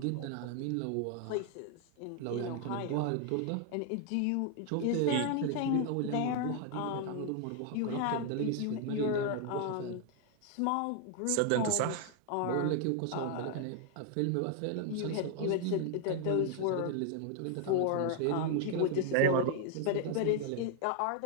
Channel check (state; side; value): different; both; correlation 0.00